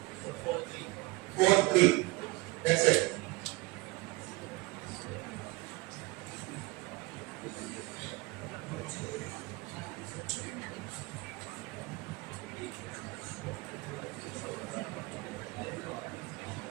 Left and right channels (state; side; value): quieter; left; 23.6 dB